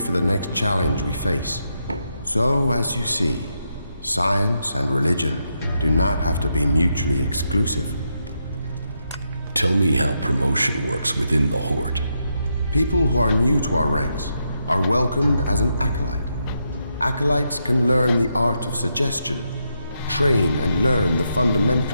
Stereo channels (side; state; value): both; inverted; correlation -0.82